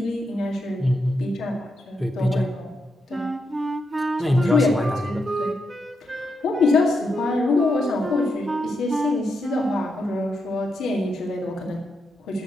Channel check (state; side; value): normal; both; correlation 0.83